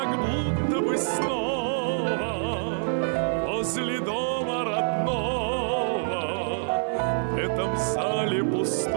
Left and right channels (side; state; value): left; silent; 61 dB below the other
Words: будто бы снова возле дома родного. В этом зале